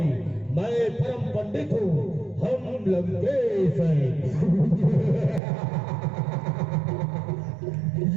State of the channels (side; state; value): left; drops out; at 5.4 s